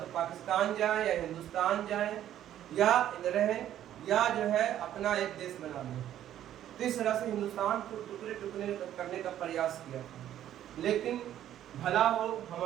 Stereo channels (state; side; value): quieter; left; 11.6 dB